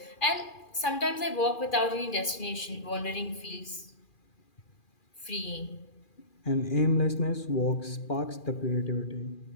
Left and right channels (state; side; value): late; right; 2.4 ms